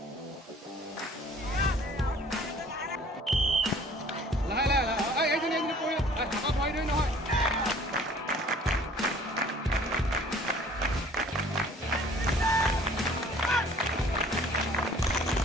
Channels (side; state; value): both; normal; correlation 0.52